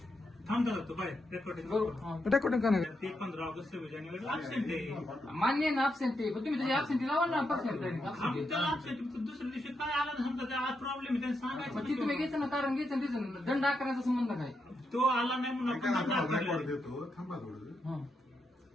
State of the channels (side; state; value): both; normal; correlation 0.83